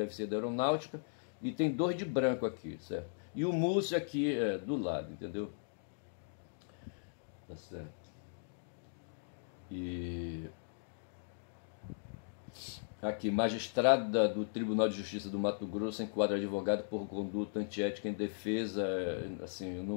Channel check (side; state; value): right; silent; digital silence